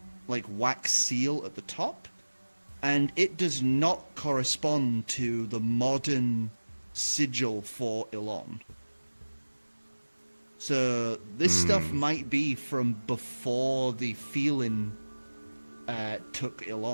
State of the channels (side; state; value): both; inverted; correlation -1.00